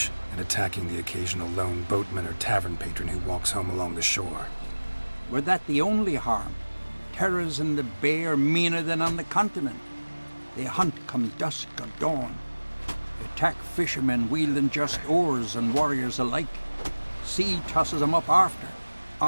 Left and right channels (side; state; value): both; inverted; correlation -1.00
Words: and attacking the occasional lone boatman or tavern patron who walks home along the shore. Were that the only harm? Terrors in the bay are meaner than on the continent. They hunt come dusk or dawn. Attack fishermen wielding just oars and warriors alike. Sea tosses them up after.